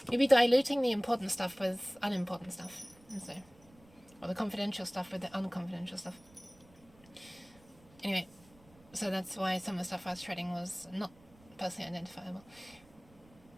you'll be diluting the important stuff with unimportant stuff, and so, or the confidential stuff with the unconfidential stuff. Anyway, so that's why some of the stuff I was shredding was not personally identifiable.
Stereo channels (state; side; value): noise; right; rumble, 26 dB below the sound